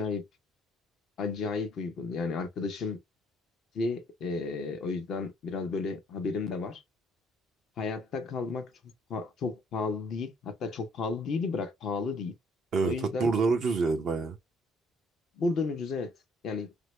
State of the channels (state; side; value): normal; both; correlation 0.63